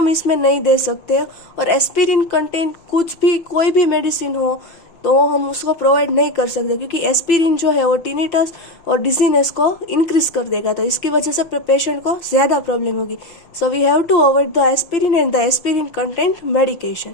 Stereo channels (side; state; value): right; late; 5.9 ms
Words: इसमें नहीं दे सकते, और एस्पिरिन कंटेंट कुछ भी कोई भी मेडिसिन हो तो हम उसको प्रोवाइड नहीं कर सकते, क्योंकि एस्पिरिन जो है वो टिनिटस और डिजीनेस को इंक्रीज कर देगा, तो इसकी वजह से पेशेंट को ज्यादा प्रॉब्लम होगी। So we have to avoid the aspirin and the aspirin content medication